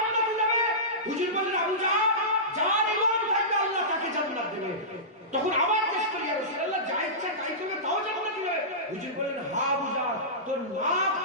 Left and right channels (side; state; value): both; normal; correlation -0.18